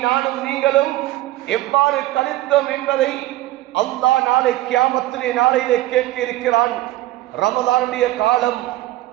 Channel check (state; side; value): quieter; left; 15.9 dB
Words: நானும் நீங்களும் எவ்வாறு கழித்தோம் என்பதை அல்லாஹ் நாளை கியாமத்துடைய நாளையிலே கேட்க இருக்கிறான். ரமலானுடைய காலம்,